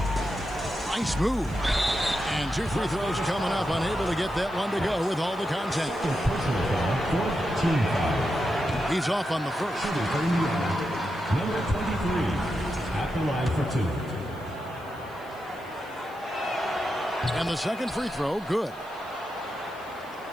Nice move. And 2 free throws coming up, unable to get that one to go with all the contact. He's off on the first. Number 23 at the line for 2. And the second free throw, good.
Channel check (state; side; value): noise; left; hiss, 26 dB below the sound